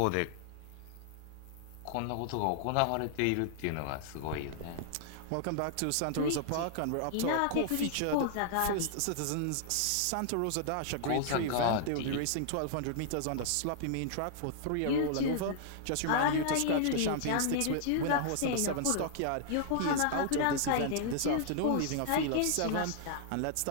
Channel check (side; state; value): both; different; correlation -0.01